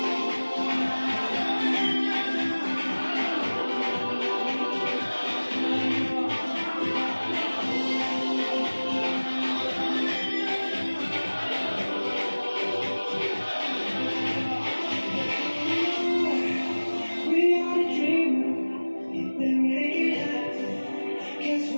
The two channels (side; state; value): both; inverted; correlation -1.00